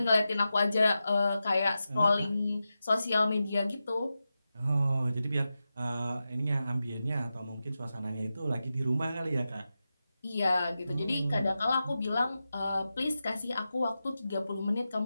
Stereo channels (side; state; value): both; inverted; correlation -0.92